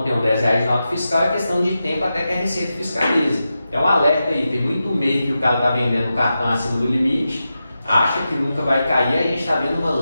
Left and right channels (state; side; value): inverted; both; correlation -0.90